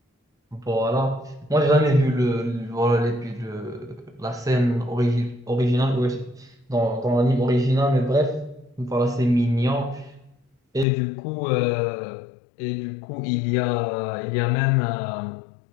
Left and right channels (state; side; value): drops out; right; at 10.9 s